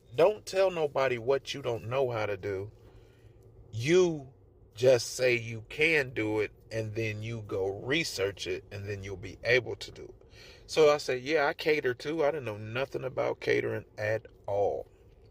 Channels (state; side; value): identical; both; correlation 1.00